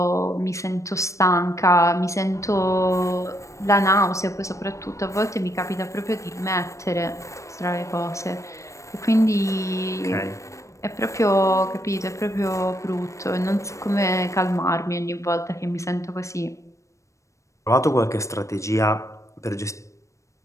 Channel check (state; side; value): late; right; 0.15 ms